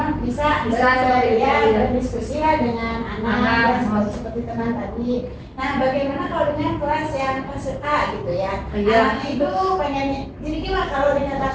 bisa seperti ya, itu, ya. berdiskusi lah dengan anak ya, seperti teman tadi. Nah, bagaimana kalau dengan kelas yang kelas A gitu ya? Iya. Anaknya itu pengen, jadi gimana kalau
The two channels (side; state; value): both; identical; correlation 1.00